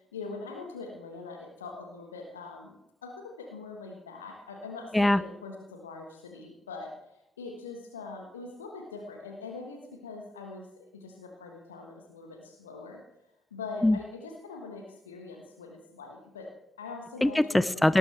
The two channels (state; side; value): normal; both; correlation 0.91